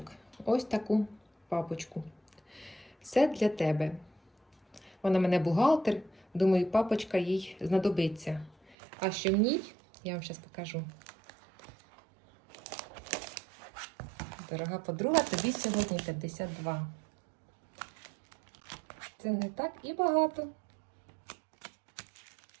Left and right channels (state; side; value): drops out; left; at 8.8 s